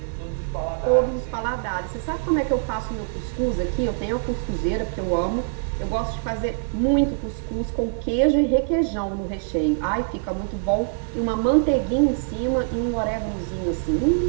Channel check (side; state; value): left; silent; 63 dB below the other